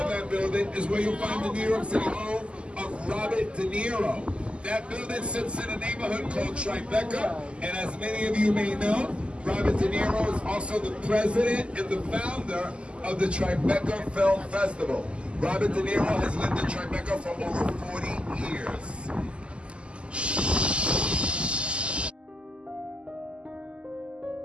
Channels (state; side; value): late; left; 0.053 ms